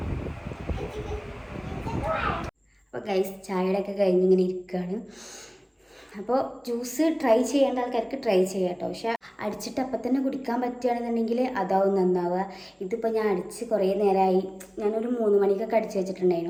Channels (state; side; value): identical; both; correlation 1.00